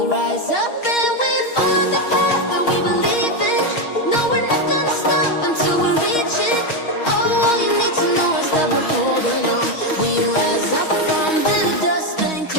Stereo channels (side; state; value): right; late; 6.3 ms